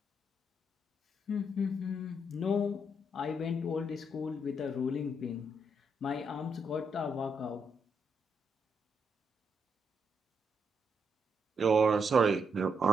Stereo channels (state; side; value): normal; both; correlation 0.78